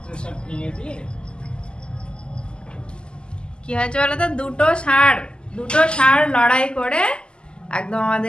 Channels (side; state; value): right; late; 0.049 ms